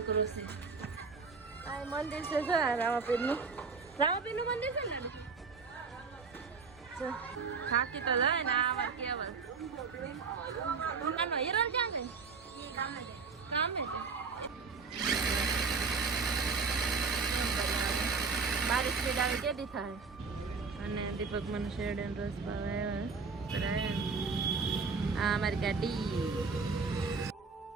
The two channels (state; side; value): quieter; left; 4.9 dB